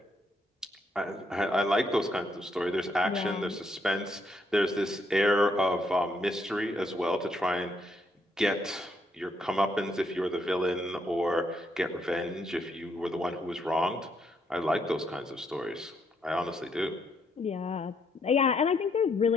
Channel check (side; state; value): both; normal; correlation 0.74